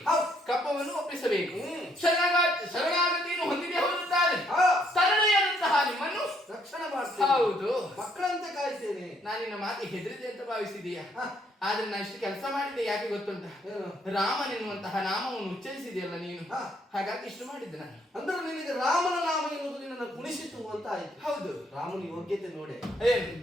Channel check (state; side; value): normal; both; correlation 0.69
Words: ಹೌದು. ಕಪ್ಪವನ್ನು ಒಪ್ಪಿಸಬೇಕು. ಶರಣಾಗತಿಯನ್ನು ಹೊಂದಿದೆ ಹೋಗುತ್ತಾರೆ. ಹಾ, ತರಳೆಯಾದಂತಹ ನಿಮ್ಮನ್ನು ರಕ್ಷಣೆ ಮಾಡ್ತೇನೆ. ಹೌದು, ಮಕ್ಕಳಂತೆ ಕಾಯ್ತೇನೆ. ನಾನು ನಿನ್ನ ಮಾತು ಹೆದರಿದೆ ಅಂತ ಭಾವಿಸಿದೀಯ. ಹಾ, ಆದ್ರೆ ನಾನು ಇಷ್ಟು ಕೆಲಸ ಮಾಡಿದ್ದೆ ಯಾಕೆ ಗೊತ್ತುಂಟ? ಏನು? ರಾಮನೆನ್ನುವಂತಹ ನಾಮವನ್ನು ಉಚ್ಚರಿಸಿದೆಯಲ್ಲ ನೀನು, ಹಾ, ಹಾಗಾಗಿ ಇಷ್ಟು ಮಾಡಿದ್ದೆ ನಾನು. ಅಂದ್ರೆ ನಿನಗೆ ರಾಮನ ನಾಮ ಎನ್ನುವುದು ನಿನ್ನನ್ನು ಕುಣಿಸಿತು ಅಂತ ಆಯ್ತು. ಹೌದು, ರಾಮನ ಯೋಗ್ಯತೆ ನೋಡೆ ಏನು